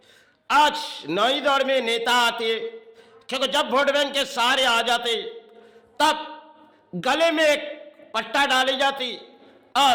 आज नई दौर में नेता आते, क्योंकि जब वोट बैंक के सहारे आ जाते तब गले में एक पट्टा डाली जाती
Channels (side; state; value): both; identical; correlation 1.00